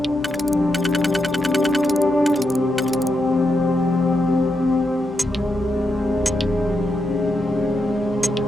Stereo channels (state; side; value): normal; both; correlation 0.84